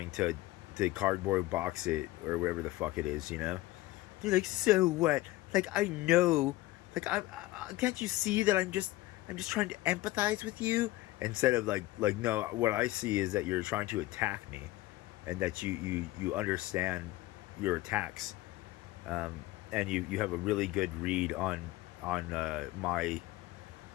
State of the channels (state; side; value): quieter; right; 17.8 dB